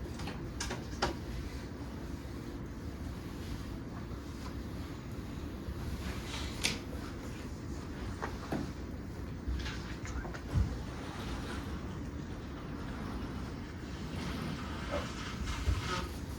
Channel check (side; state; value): both; identical; correlation 1.00